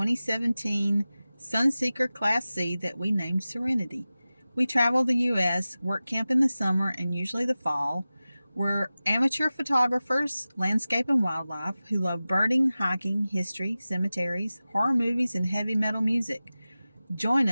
Sunseeker Class C that we named Serenity. We travel the U.S., work camp in the summer and usually the fall. We're amateur photographers, landscape and wildlife, who love birding, hiking, history, cemeteries, horror movies, and heavy metal music. Join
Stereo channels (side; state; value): both; inverted; correlation -0.96